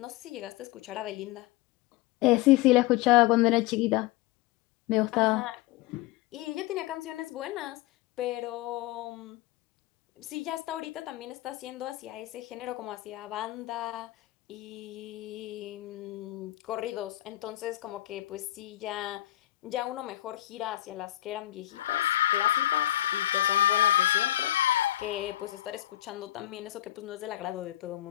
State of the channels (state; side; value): quieter; right; 14.9 dB